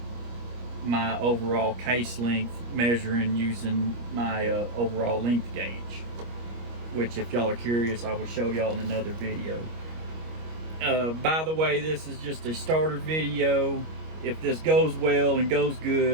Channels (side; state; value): left; late; 25 ms